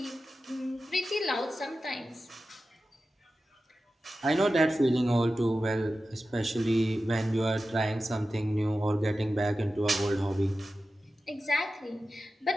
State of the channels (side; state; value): both; normal; correlation 0.93